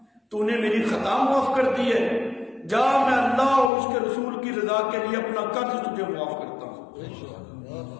تو نے میری خطا معاف کر دی ہے، جا میں اللہ اور اس کے رسول کی رضا کے لیے اپنا قرض تجھے معاف کرتا ہوں۔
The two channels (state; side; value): drops out; right; at 3.7 s